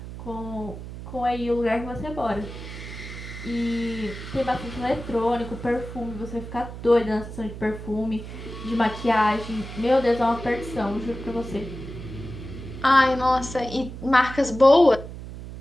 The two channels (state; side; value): noise; right; hum, 11 dB below the sound